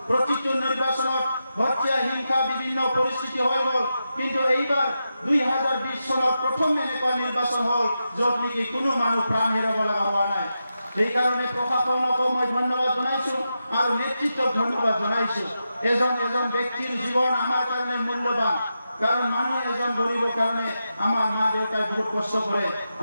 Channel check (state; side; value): inverted; both; correlation -0.88